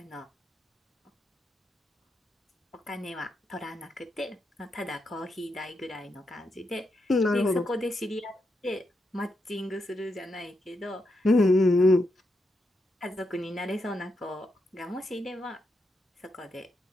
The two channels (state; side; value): normal; both; correlation 0.83